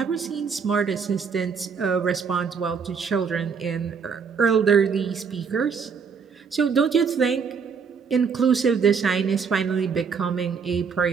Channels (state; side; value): quieter; left; 6.0 dB